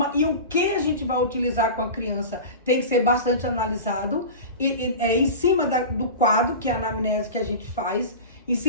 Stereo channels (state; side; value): inverted; both; correlation -0.30